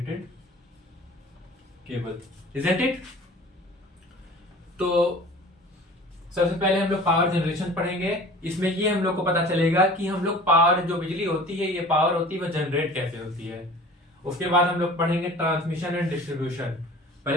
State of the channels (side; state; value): both; normal; correlation 0.43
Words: केबल। Isn't it? तो सबसे पहले हम लोग पावर जनरेशन पढ़ेंगे। इसमें ये हम लोग को पता चलेगा कि हम लोग पावर, जो बिजली होती है, ये पावर होती है, वह जनरेट कैसे होती है। उसके बाद हम लोग पढ़ेंगे ट्रांसमिशन एंड डिस्ट्रीब्यूशन।